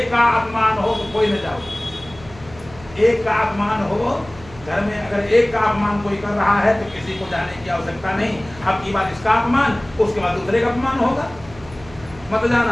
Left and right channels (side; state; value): right; noise; hum, 20 dB below the sound